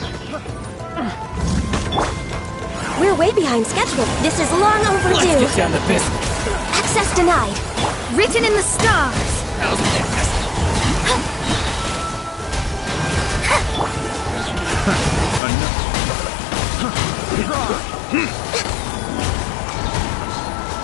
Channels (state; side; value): drops out; right; at 15.4 s